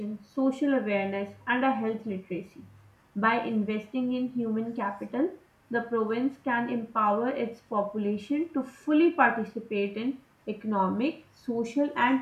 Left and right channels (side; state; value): both; identical; correlation 1.00